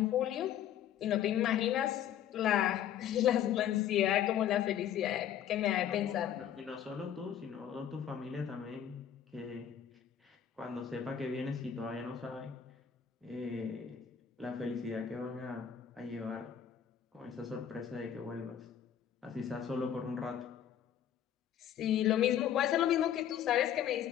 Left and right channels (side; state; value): right; quieter; 9.7 dB